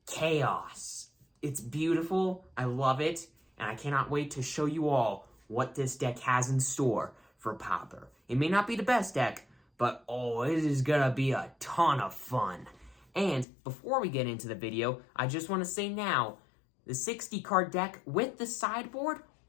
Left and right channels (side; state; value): right; drops out; at 13.5 s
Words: chaos. It's beautiful. I love it. And I cannot wait to show you all what this deck has in store for Pauper. It may not be the best deck, but oh, it is gonna be a ton of fun. And before we get into the video, I just want to say now, the 60 card deck with the sideboard